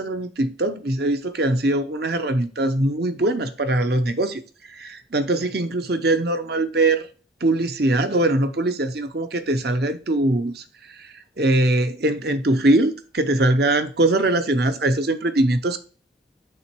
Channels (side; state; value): both; normal; correlation 0.49